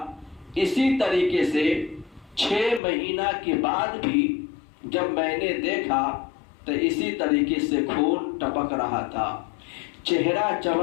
اسی طریقے سے 6 مہینہ کے بعد بھی جب میں نے دیکھا تو اسی طریقے سے خون ٹپک رہا تھا، چہرہ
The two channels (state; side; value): drops out; right; at 2.8 s